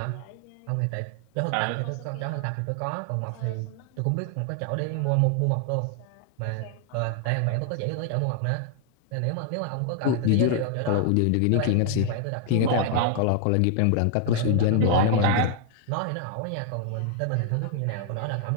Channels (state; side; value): different; both; correlation 0.00